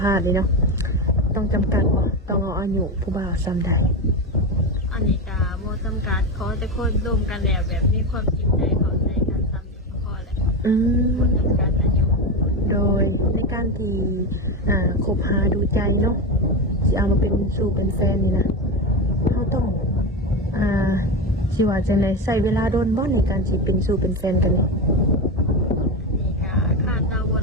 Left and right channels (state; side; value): normal; both; correlation 0.16